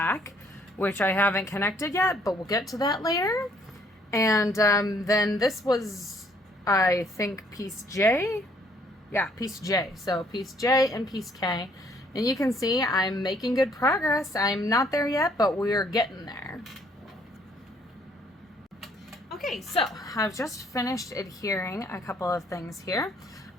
which I haven't connected yet, but we'll get to that later. And then this was, I think, piece J. Yeah, piece J. So piece J and piece K. And you can see I'm making good progress. I'm not there yet, but we're getting there. Okay, so I've just finished adhering a couple of things here.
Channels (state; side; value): normal; both; correlation 0.64